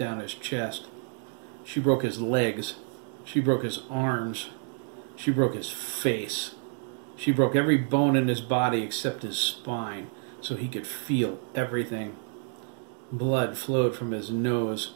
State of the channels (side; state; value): left; silent; 59 dB below the other